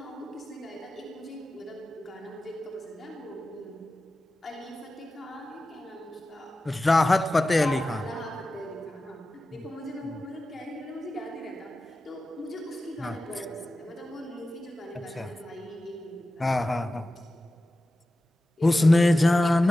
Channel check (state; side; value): normal; both; correlation 0.94